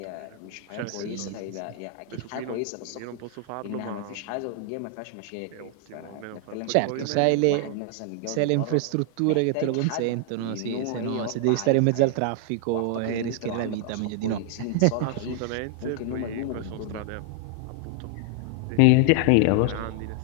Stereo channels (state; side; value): different; both; correlation 0.00